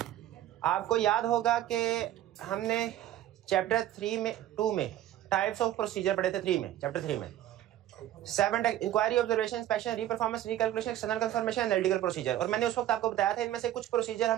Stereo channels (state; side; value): quieter; left; 12.8 dB